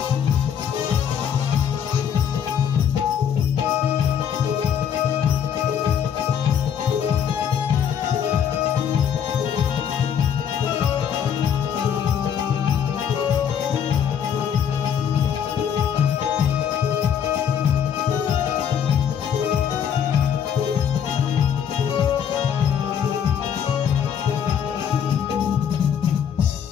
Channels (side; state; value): right; quieter; 8.3 dB